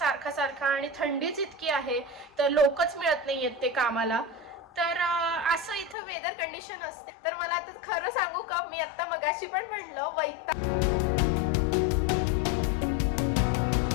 सारखा आणि थंडीच इतकी आहे तर लोकच मिळत नाहीयेत ते कामाला. तर असं इथं वेदर कंडिशन असते. तर मला आता खरं सांगू का, मी आता मगाशी पण म्हणलं वैताग.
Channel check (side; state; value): right; drops out; at 6.0 s